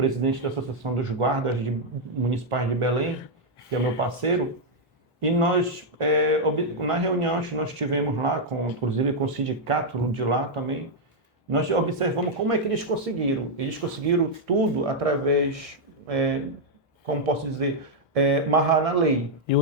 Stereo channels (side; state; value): both; normal; correlation -0.03